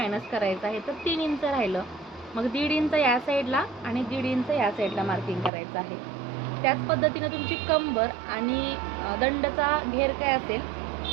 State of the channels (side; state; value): left; drops out; at 5.5 s